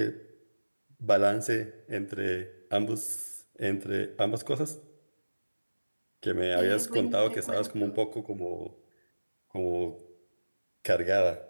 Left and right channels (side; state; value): both; inverted; correlation -1.00